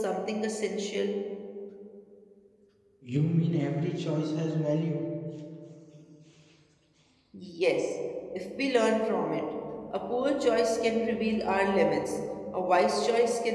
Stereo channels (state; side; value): identical; both; correlation 1.00